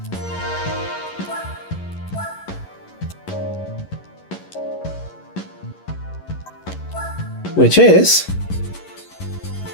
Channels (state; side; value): late; right; 11 ms